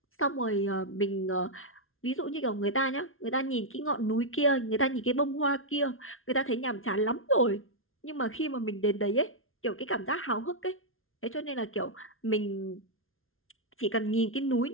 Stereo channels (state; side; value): late; right; 0.61 ms